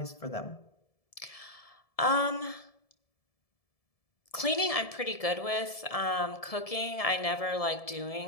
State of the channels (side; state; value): right; late; 1.7 ms